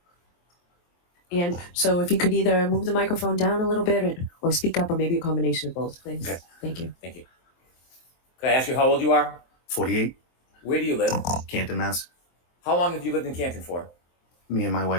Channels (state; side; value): late; right; 23 ms